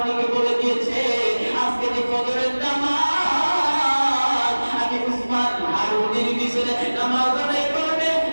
বলে দিয়েছে আজকে যে ফজরের নামাজ আমি উসমান হারুনির পিছনে নামাজ আদায় করবে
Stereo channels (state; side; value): inverted; both; correlation -1.00